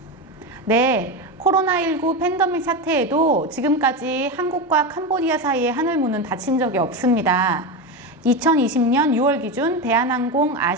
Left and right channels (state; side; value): normal; both; correlation 0.17